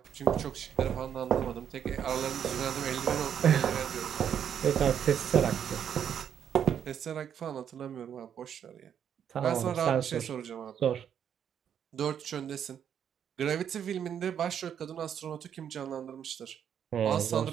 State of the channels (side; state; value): left; quieter; 8.7 dB